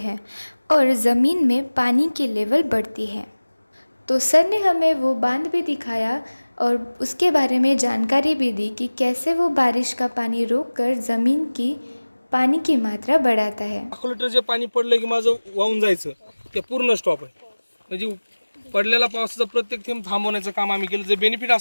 और ज़मीन में पानी की लेवल बढ़ती है। तो सर ने हमें वो बांध भी दिखाया और उसके बारे में जानकारी भी दी कि कैसे वो बारिश का पाणी रोककर ज़मीन की पाणी की मात्रा बढ़ाता है। 1 लिटर जे पाणी पडलं की माझं वाहून जायचं ते पूर्ण स्टॉप आहे। म्हणजे पडलेला पावसाचा प्रत्येक थेंब थांबवण्याचं काम आम्ही केलं। जे बेनिफिट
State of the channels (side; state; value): both; inverted; correlation -1.00